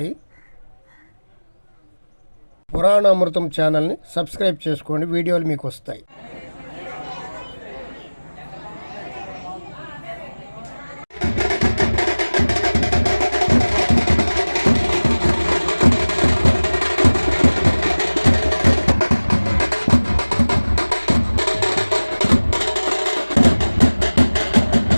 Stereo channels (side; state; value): both; inverted; correlation -1.00